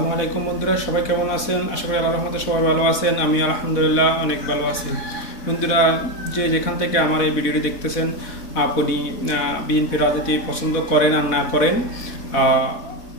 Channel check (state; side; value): late; right; 4.1 ms